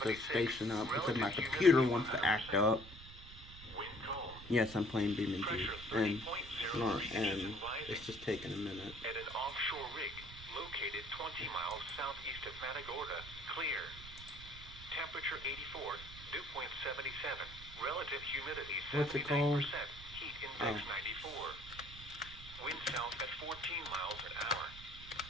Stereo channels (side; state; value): right; noise; rumble, 14 dB below the sound